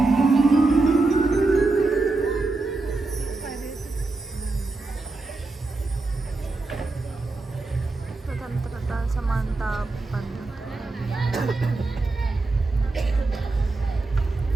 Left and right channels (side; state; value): left; quieter; 3.4 dB